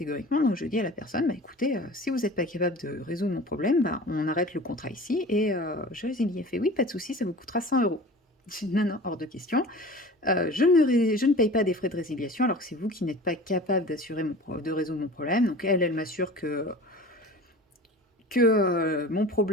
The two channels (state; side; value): normal; both; correlation 0.39